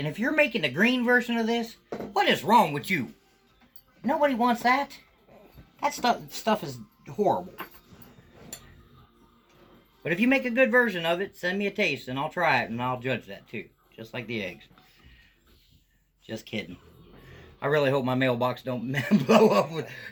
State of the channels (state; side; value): identical; both; correlation 1.00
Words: if you're making the green version of this, what is wrong with you? Nobody wants that. That stuff is horrible. But if you make a good version of it, send me a taste and I'll try it and I'll judge that too. Just like the eggs. Just kidding. I really hope my mailbox don't blow up with